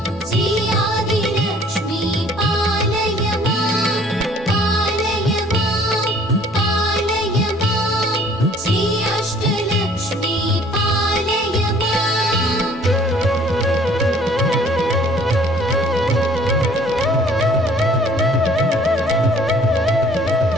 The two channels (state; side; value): normal; both; correlation 0.56